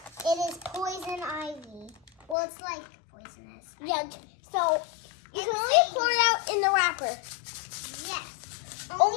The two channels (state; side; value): drops out; right; at 2.4 s